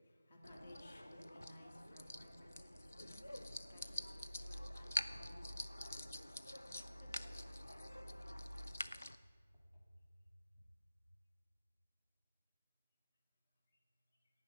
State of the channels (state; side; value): inverted; both; correlation -0.88